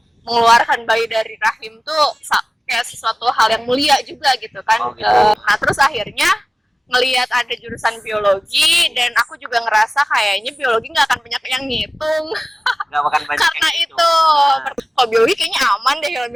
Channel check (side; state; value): both; normal; correlation 0.97